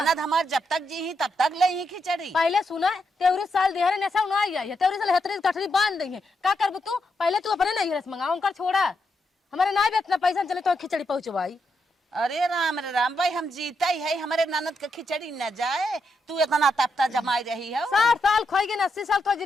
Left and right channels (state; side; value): normal; both; correlation 0.81